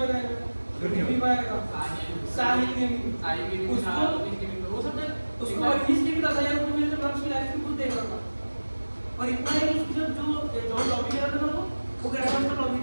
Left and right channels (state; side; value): inverted; both; correlation -1.00